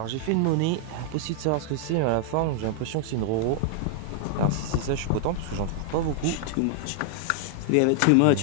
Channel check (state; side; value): different; both; correlation 0.00